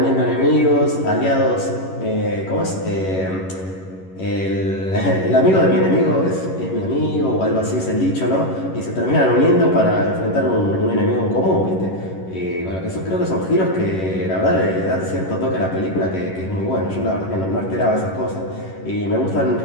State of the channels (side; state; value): right; late; 11 ms